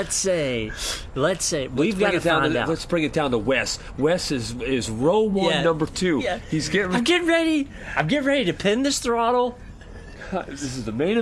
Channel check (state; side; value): identical; both; correlation 1.00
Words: say we've got to find out. Let's bring it down to Wes. Wes is row 1, number 2. Yeah. He's getting. I'm getting ready to pin this throttle. This is the main